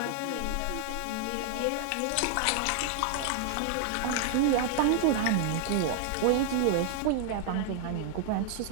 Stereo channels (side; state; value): both; different; correlation 0.00